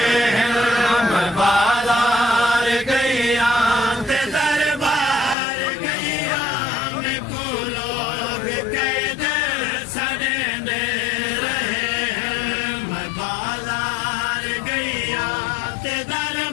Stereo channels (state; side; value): drops out; right; at 5.4 s